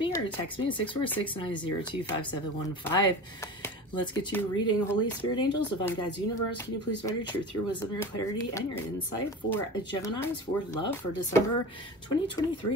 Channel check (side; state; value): both; normal; correlation 0.33